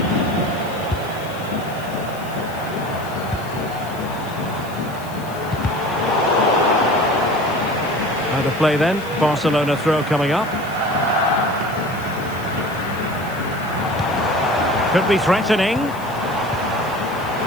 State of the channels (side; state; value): left; noise; hiss, 19 dB below the sound